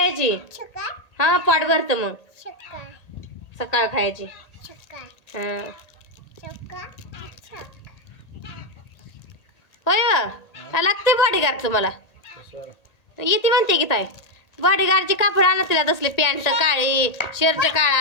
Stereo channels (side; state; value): right; late; 1.8 ms